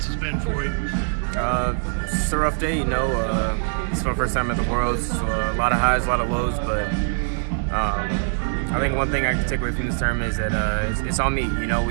has been for you. It's a rough day, It's my first time at the Worlds, so a lot of highs, a lot of lows, but I think one thing I can take away from this tournament is that it's on me.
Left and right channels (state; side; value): silent; left; 62 dB below the other